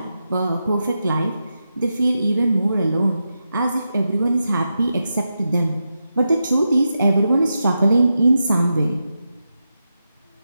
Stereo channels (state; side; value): inverted; both; correlation -0.88